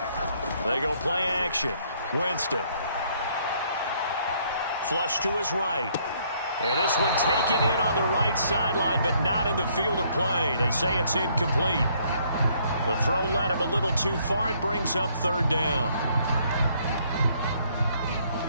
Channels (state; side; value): inverted; both; correlation -0.66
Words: They go play action. Winston. Flush to his right. And this one taken in on the right sideline, but not in the field of play. They say it's incomplete. The throw led him a little too far. It brings up 3rd down.